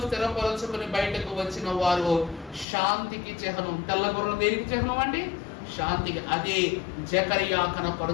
స్థిరపరచుకుని బయటకు వచ్చిన వారు శాంతికి చిహ్నం. తెల్ల గుర్రం దేనికి చిహ్నం అండి? శాంతికి. అదే జకరియా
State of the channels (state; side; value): drops out; right; at 2.7 s